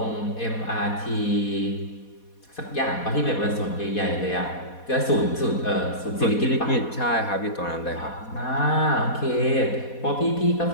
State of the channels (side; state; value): right; late; 4.2 ms